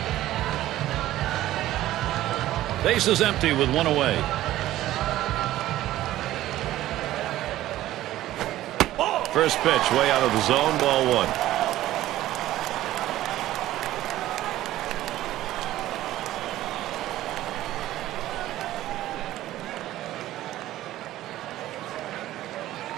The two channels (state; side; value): quieter; left; 14.6 dB